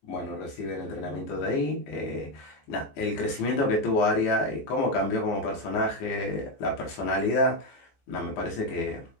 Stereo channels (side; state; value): right; late; 14 ms